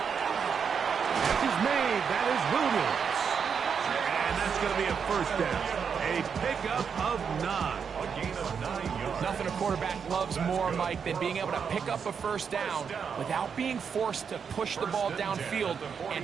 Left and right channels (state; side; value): quieter; left; 6.6 dB